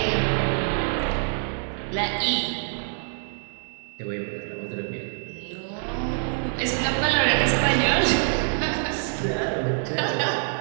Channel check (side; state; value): left; silent; 61 dB below the other